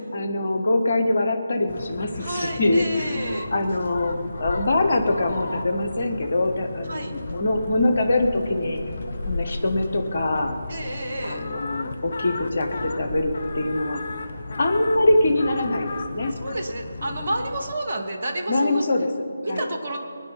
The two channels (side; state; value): both; inverted; correlation -0.89